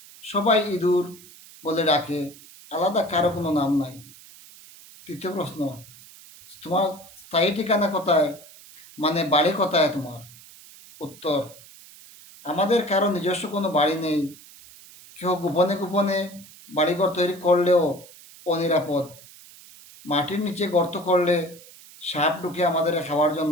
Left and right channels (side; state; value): right; noise; hiss, 21 dB below the sound